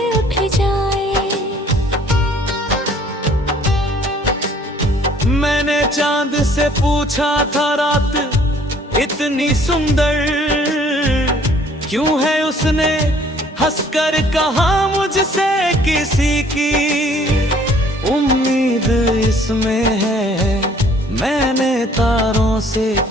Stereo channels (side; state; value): both; normal; correlation 0.58